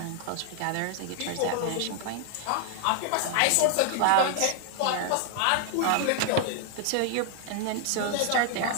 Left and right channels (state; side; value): different; both; correlation 0.00